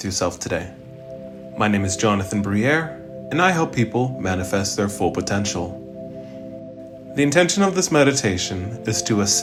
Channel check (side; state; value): both; identical; correlation 1.00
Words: yourself today. My name is Jonathan Briere, and I help people manifest their full potential. The intention of this meditation is to